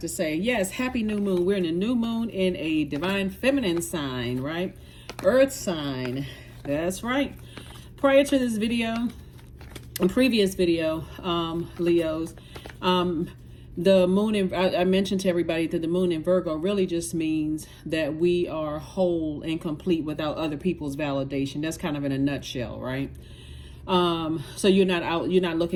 say. Yes, happy new moon. We're in a new moon in a divine feminine sign, right? Earth sign. That's right. Prior to this video, in previous video, Leos, the moon in, I mentioned to everybody that the moon in Virgo really just means that we are whole and complete without other people's validation. That's kind of in a nutshell, right? So you're not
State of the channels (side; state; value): both; identical; correlation 1.00